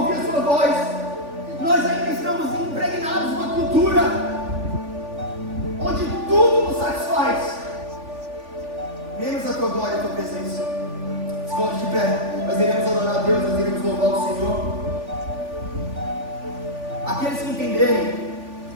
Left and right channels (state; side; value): late; left; 3.5 ms